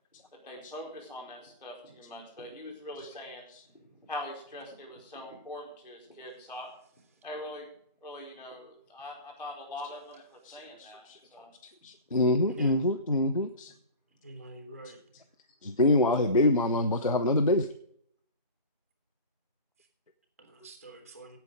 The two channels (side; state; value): both; inverted; correlation -0.33